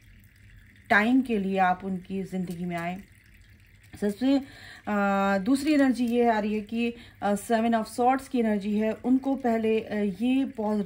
टाइम के लिए आप उनकी ज़िंदगी में आए। सबसे दूसरी एनर्जी ये आ रही है कि 7 ऑफ सॉर्ड्स की एनर्जी है। उनको पहले ये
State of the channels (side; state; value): both; identical; correlation 1.00